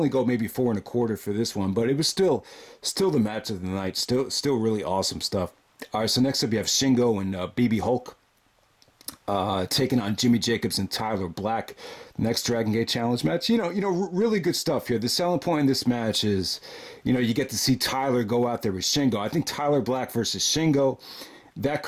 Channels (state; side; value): identical; both; correlation 1.00